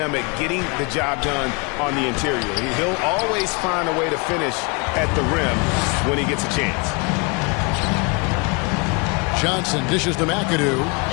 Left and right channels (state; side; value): quieter; right; 31.0 dB